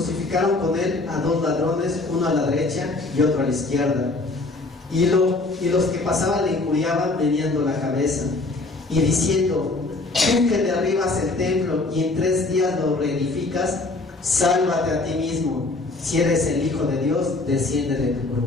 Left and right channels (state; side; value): quieter; right; 3.2 dB